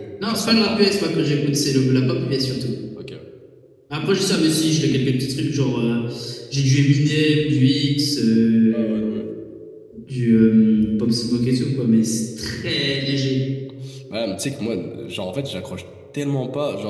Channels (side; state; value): both; identical; correlation 1.00